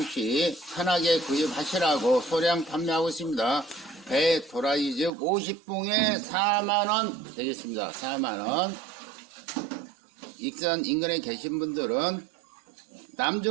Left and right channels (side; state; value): left; drops out; at 5.1 s